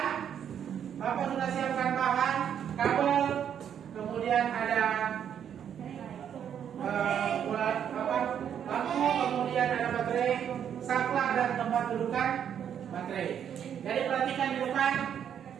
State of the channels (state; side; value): quieter; left; 8.9 dB